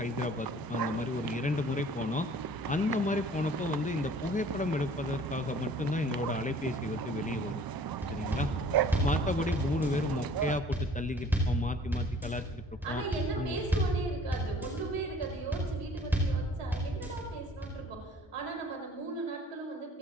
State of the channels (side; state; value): both; normal; correlation 0.52